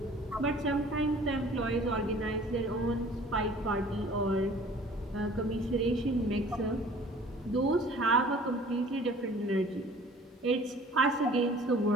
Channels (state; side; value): normal; both; correlation 0.49